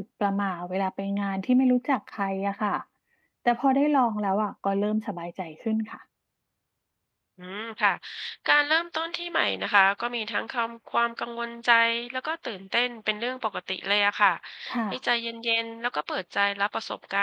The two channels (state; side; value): identical; both; correlation 1.00